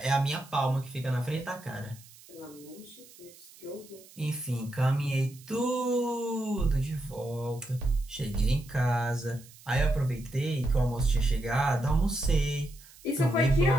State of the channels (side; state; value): right; noise; hiss, 22 dB below the sound